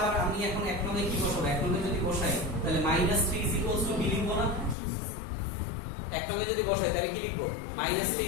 আমি এখন 1 নং এ কি বসাবো? 1 নং এ যদি বসাই তাহলে -3 b লিখবো না? 1 নং এ যদি বসাই তাহলে কি লিখবো?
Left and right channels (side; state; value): right; drops out; at 4.8 s